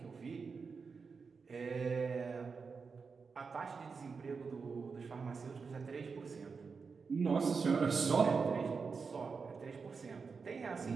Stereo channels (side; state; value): left; quieter; 5.1 dB